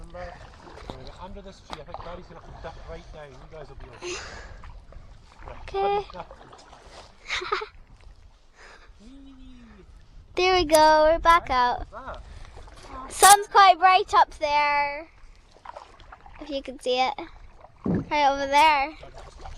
We're going to get under this tree. I think Daddy's going to have to dip right down. You guys will be okay. Right, Okay. There we go, we're back out. that? Sun's quite bright up there. If you can see it. Right over there.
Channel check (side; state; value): both; identical; correlation 1.00